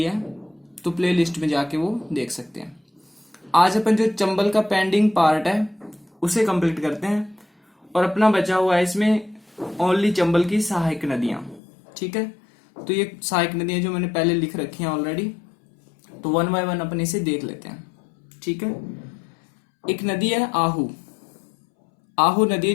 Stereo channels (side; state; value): right; drops out; at 11.6 s